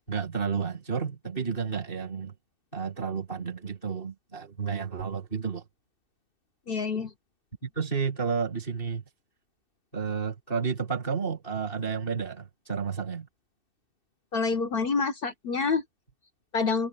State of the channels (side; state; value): right; late; 2.6 ms